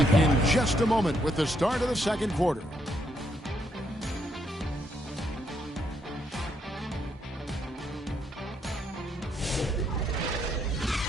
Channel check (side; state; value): both; normal; correlation 0.75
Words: in just a moment with the start of the second quarter.